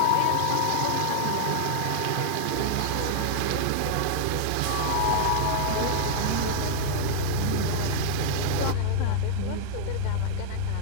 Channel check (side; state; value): both; different; correlation -0.01